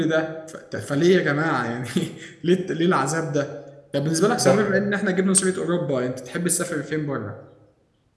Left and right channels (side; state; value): both; identical; correlation 1.00